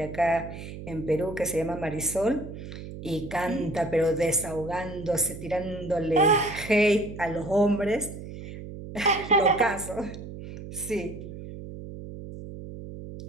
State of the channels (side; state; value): right; noise; hum, 11 dB below the sound